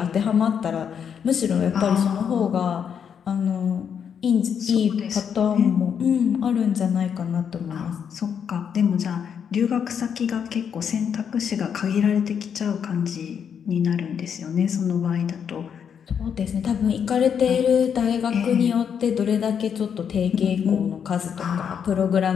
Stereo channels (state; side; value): quieter; right; 7.6 dB